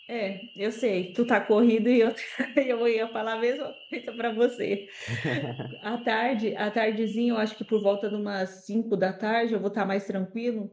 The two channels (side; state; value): both; identical; correlation 1.00